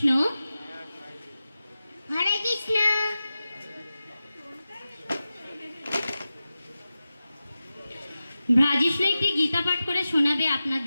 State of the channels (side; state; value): both; inverted; correlation -0.94